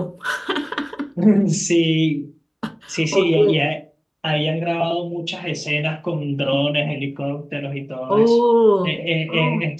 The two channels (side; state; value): both; identical; correlation 1.00